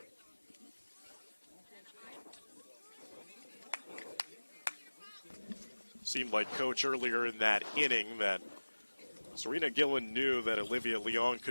Seemed like Coach earlier in that inning that Serena Gillen knew that Olivia Leone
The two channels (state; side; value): inverted; both; correlation -1.00